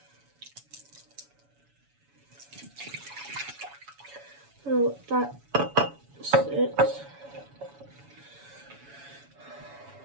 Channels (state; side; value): late; left; 7.1 ms